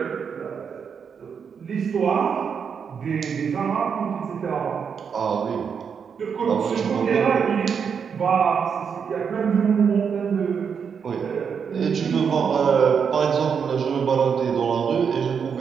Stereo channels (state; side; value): quieter; left; 6.7 dB